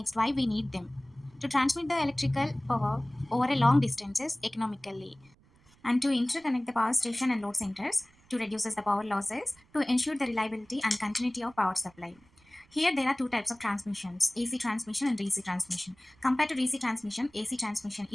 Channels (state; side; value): noise; right; rumble, 30 dB below the sound